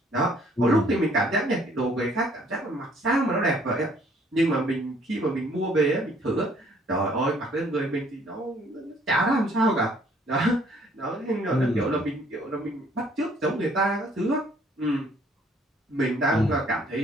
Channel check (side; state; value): both; normal; correlation 0.61